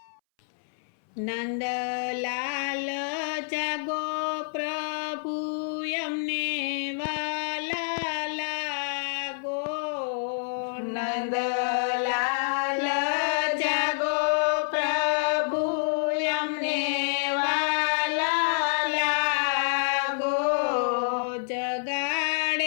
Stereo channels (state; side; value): silent; right; 60 dB below the other